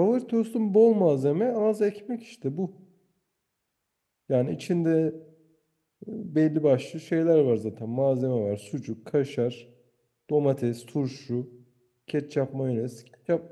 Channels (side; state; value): both; identical; correlation 1.00